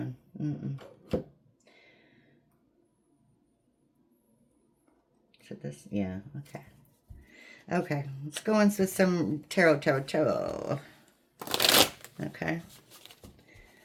So this, yeah, okay, let's go into some tarot. Okay,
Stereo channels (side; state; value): both; identical; correlation 1.00